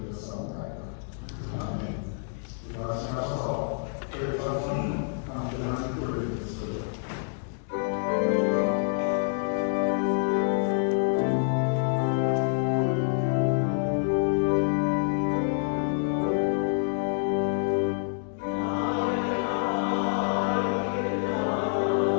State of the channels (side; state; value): right; silent; digital silence